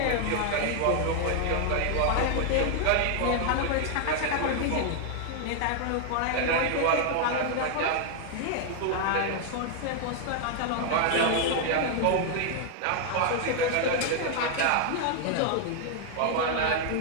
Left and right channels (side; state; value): both; different; correlation 0.00